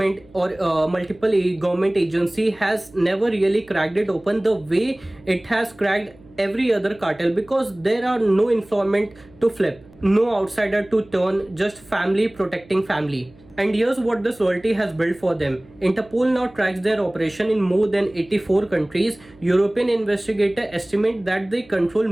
or multiple government agency has never really cracked it open the way it has cracked every other cartel, because there are no informant to flip, no outsider to turn, just family protecting family. And here's what this loyalty has built for them. Interpol now tracks their operation in more than 84 countries. European investigators estimate that they control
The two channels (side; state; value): right; noise; hum, 25 dB below the sound